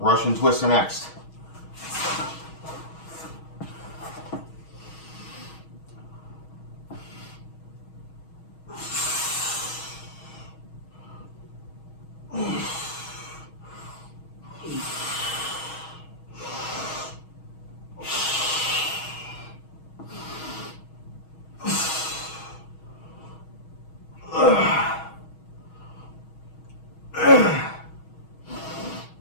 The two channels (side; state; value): right; late; 6.3 ms